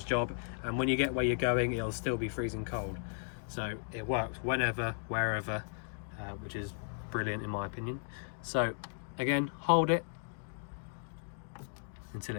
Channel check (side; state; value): right; silent; digital silence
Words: job, and when you get where you're going, it'll still be freezing cold. So it works whenever, wherever, which is brilliant in my opinion. So again, hold it until